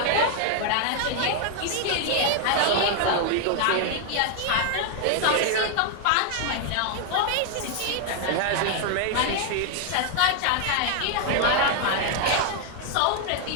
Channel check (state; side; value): different; both; correlation 0.00